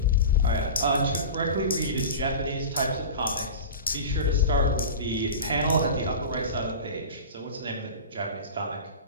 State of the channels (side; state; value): both; inverted; correlation -0.31